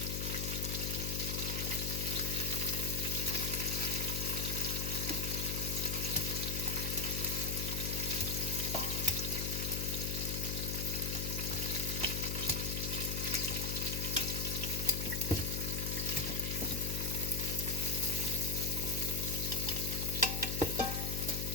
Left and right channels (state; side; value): noise; left; hum, 1 dB below the sound